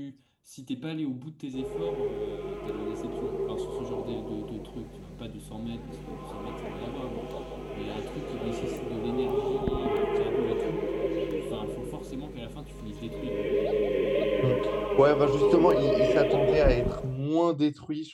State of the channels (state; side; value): identical; both; correlation 1.00